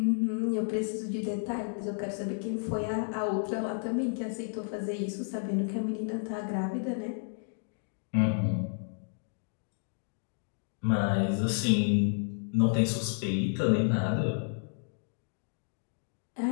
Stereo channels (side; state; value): right; silent; digital silence